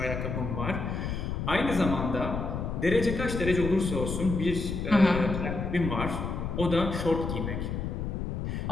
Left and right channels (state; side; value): noise; left; rumble, 3 dB below the sound